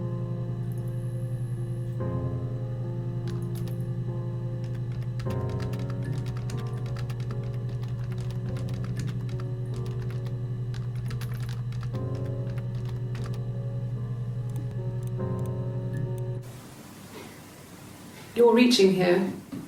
You're reaching here.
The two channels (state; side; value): identical; both; correlation 1.00